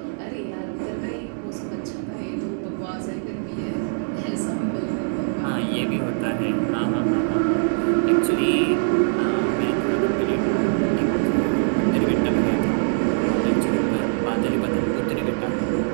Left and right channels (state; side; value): silent; left; digital silence